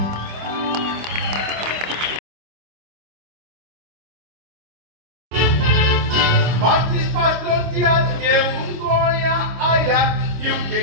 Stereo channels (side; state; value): left; late; 25 ms